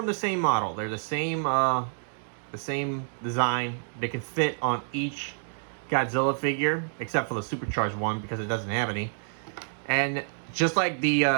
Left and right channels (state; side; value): silent; left; digital silence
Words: the same model. They're the same design. They can fit on each Godzilla figure, except for the supercharged one because it doesn't have any. And just like